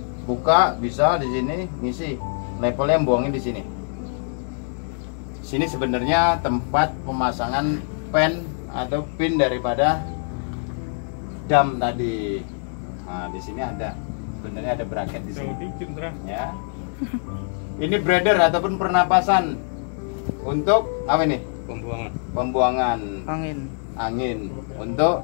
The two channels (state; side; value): silent; right; 63 dB below the other